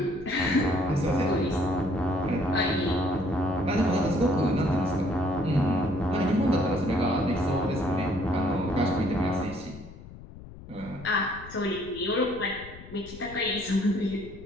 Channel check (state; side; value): noise; left; rumble, 16 dB below the sound